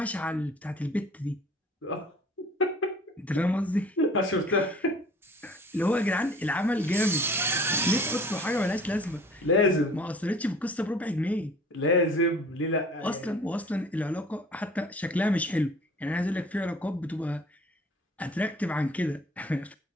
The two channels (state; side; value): normal; both; correlation 0.49